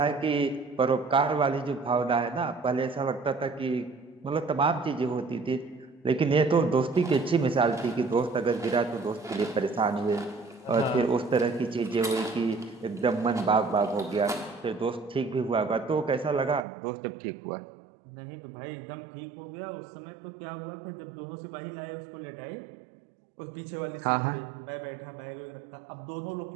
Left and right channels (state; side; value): drops out; left; at 16.6 s